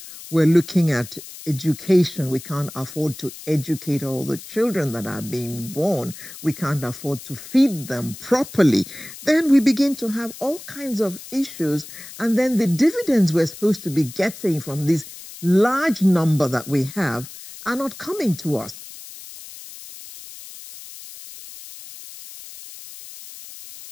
we're looking at education. We can't afford to educate all the children that are being born. We can't afford to feed them properly. Then we begin to have all kinds of issues. And then the dividends we're supposed to be getting from this large number that we have are not coming to us.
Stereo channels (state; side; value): noise; left; hiss, 15 dB below the sound